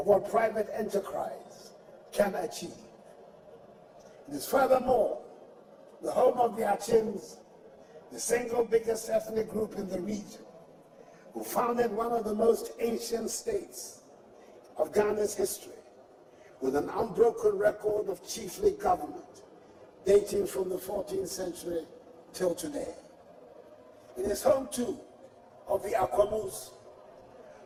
what private enterprise can achieve. It is furthermore the home of the Achims, the single biggest ethnic group in the region, who founded one of the most ancient states of Ghana's history, with an unbroken record of chiefly government dating from the 14th century till today. It is home too of the Akwamus,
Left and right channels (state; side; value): identical; both; correlation 1.00